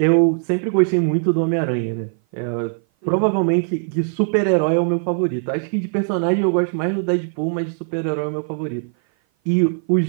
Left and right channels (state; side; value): silent; left; 56 dB below the other